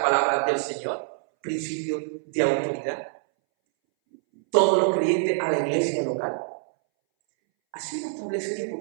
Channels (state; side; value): silent; left; 61 dB below the other